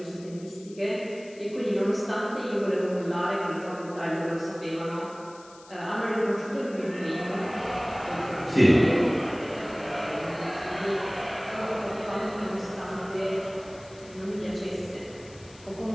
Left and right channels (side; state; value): left; noise; hiss, 23 dB below the sound